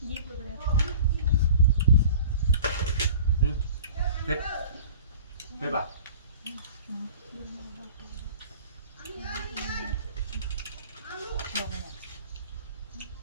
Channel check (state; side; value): inverted; both; correlation -0.42